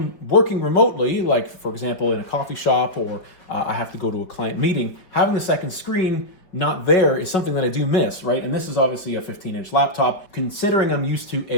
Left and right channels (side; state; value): right; late; 5.4 ms